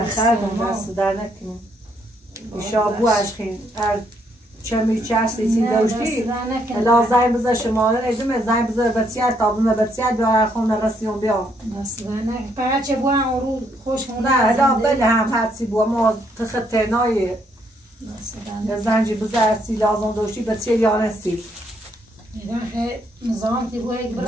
خردم دستو در نکنه ایشا بو عشقین چمی چشتی چی دوشتی الا زای بزر شماره ادومه زای بزر بسیار تابونه بسیار دو خون رسیون بیام دست در نکنه فقط چه بو هم رو خوش خونده نه الا بله هم حدسی بو ما تختنای یا زنجی بزر سی لازم دوشتی بسیار یانستی ایدان خیلی نظام تی بو یک نه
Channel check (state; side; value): normal; both; correlation 0.72